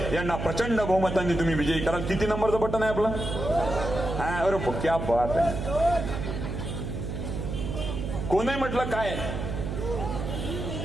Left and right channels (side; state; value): right; noise; hum, 4 dB below the sound